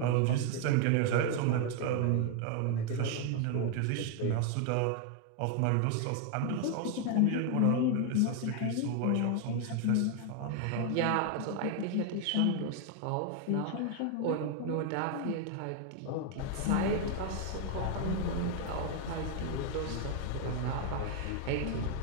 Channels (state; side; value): different; both; correlation 0.00